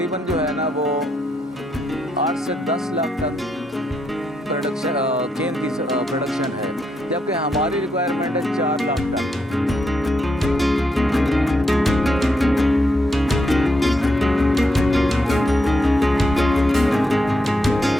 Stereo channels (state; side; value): normal; both; correlation 0.80